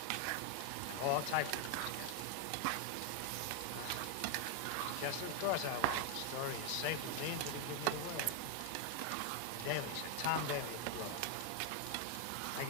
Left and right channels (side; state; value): both; different; correlation 0.01